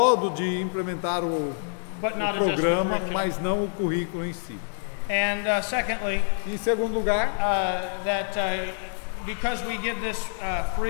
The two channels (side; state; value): right; silent; digital silence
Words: de implementar o but not adjust the programa, curriculum. mas não o currículo em si. And secondly, Em segundo lugar, that because we give this